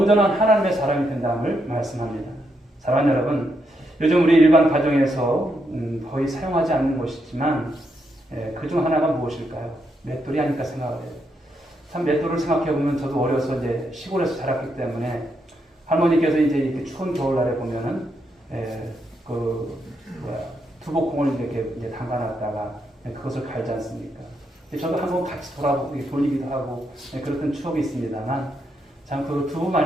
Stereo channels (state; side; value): normal; both; correlation 0.80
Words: 하나님의 사람이 된다음을 말씀합니다. 사랑하는 여러분, 요즘 우리 일반 가정에서 거의 사용하지 않는 것이지만 그중 하나가 무엇일까요? 맷돌이 아닐까 생각을 해요. 참 맷돌을 생각해 보면 저도 어려서 이제 시골에서 자랐기 때문에 할머니께서 이제 이렇게 추운 겨울날에 보면은 두복콩을 이렇게 이제 담가놨다가 그것을 갈지 않습니까? 저도 한번 같이 돌리기도 하고 그랬던 추억이 있습니다만 참 그 두부